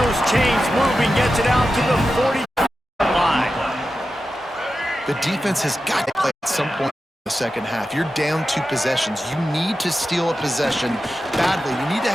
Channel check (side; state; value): both; normal; correlation 0.92